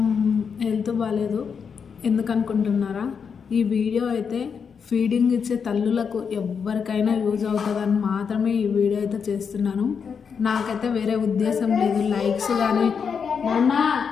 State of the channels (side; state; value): right; quieter; 6.4 dB